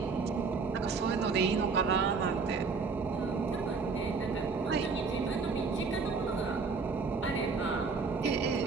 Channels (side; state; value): left; quieter; 4.7 dB